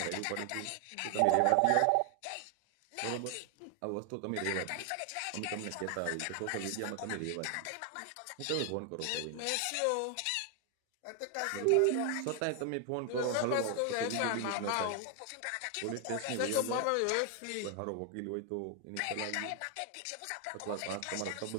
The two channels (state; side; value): different; both; correlation 0.00